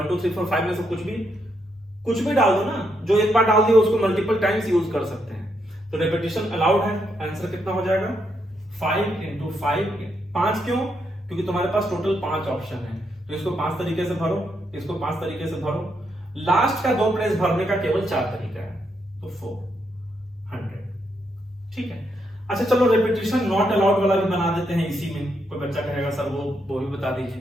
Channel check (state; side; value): normal; both; correlation 0.79